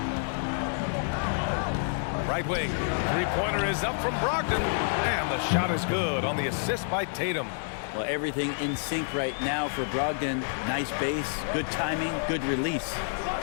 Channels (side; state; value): right; silent; 59 dB below the other